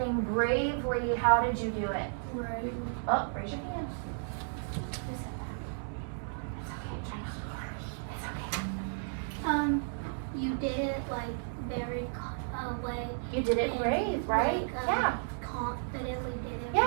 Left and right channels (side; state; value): left; silent; 56 dB below the other